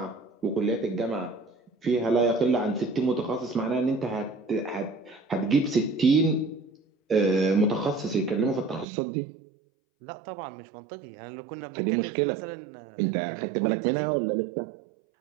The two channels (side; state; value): left; drops out; at 8.8 s